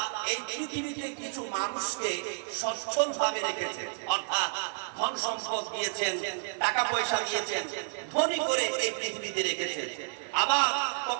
এই পৃথিবীতে কিছু মানুষকে সচ্ছল ভাবে রেখেছেন, অর্থাৎ ধন সম্পদ দিয়েছেন, টাকা পয়সা দিয়েছেন, ধনী করে এই পৃথিবীতে রেখেছেন। আবার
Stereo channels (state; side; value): silent; left; 57 dB below the other